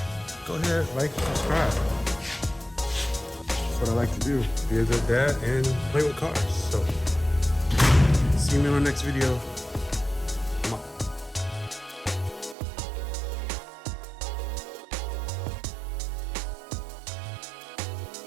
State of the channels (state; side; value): drops out; left; at 12.6 s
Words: go ahead, like and subscribe. That's what I like to do, be a good dad and play with cars. So, see you in my next video.